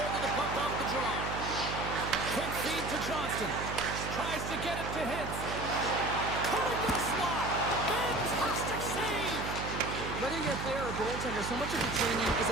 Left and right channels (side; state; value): right; noise; hum, 6 dB below the sound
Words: of the puck off the draw. Quick feed to Johnston. Tries to get it to Hintz. Cutting the slot. Fantastic save. Whether you're a player or goaltender, so much of the training is